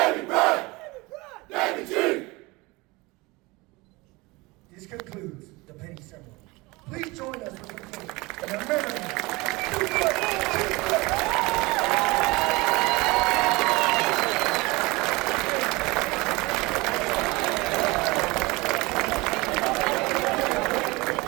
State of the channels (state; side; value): quieter; left; 23.6 dB